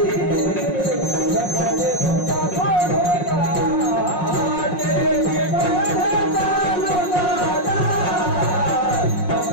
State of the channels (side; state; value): right; late; 5.5 ms